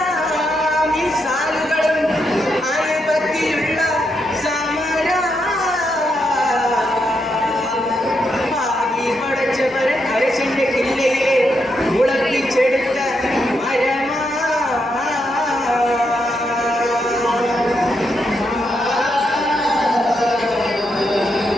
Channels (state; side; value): normal; both; correlation 0.81